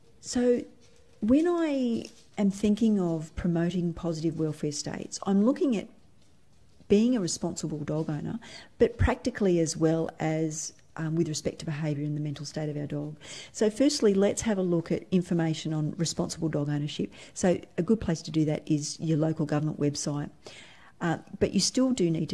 So when I am thinking of promoting positive welfare states, I'm looking at being a responsible dog owner, but practically as well as with respect to behaviour and the mental state of our dog. So firstly, let's have a look at information on responsible dog ownership. So a good place to do that is your local government website. But you still do need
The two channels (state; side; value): identical; both; correlation 1.00